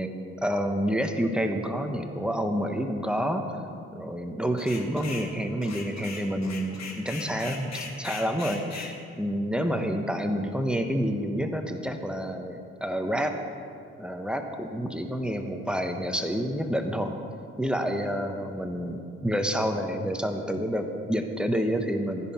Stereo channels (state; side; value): normal; both; correlation 0.78